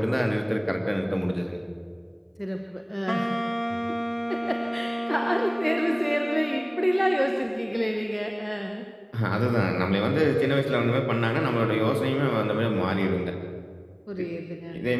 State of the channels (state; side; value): identical; both; correlation 1.00